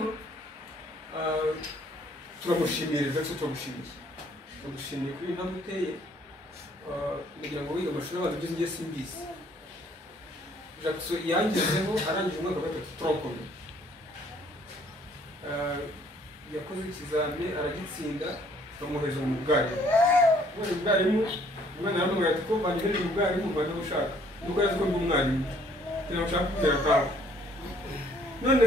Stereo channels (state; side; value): normal; both; correlation 0.61